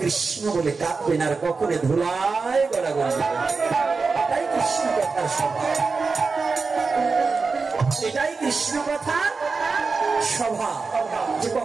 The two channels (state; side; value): quieter; left; 4.4 dB